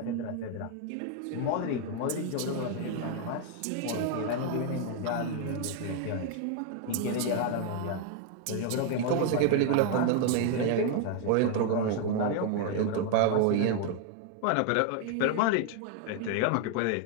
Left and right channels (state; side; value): different; both; correlation 0.00